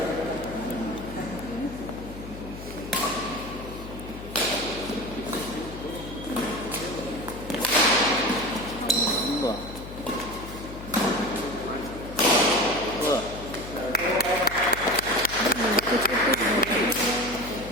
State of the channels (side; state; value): left; noise; hum, 12 dB below the sound